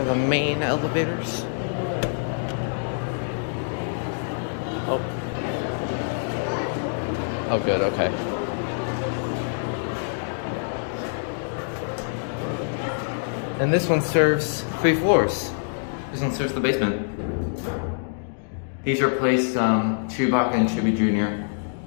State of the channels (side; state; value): right; silent; digital silence